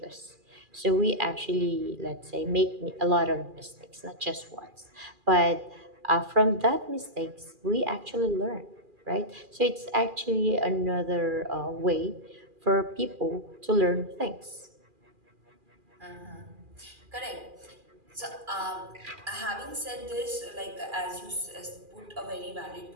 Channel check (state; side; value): late; left; 2.4 ms